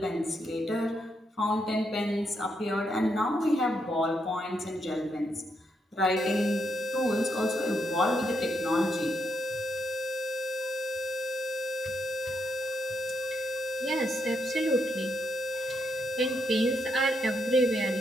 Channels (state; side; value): normal; both; correlation 0.79